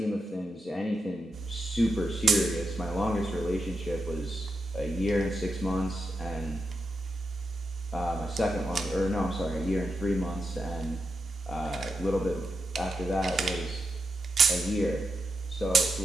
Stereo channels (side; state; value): both; normal; correlation 0.86